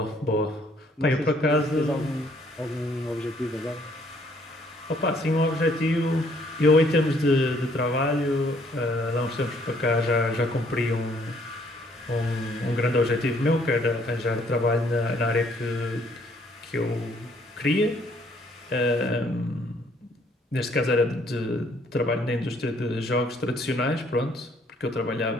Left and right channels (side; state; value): both; normal; correlation 0.64